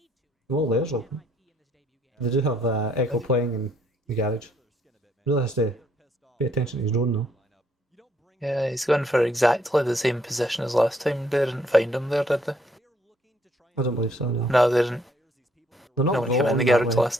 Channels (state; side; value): normal; both; correlation 0.68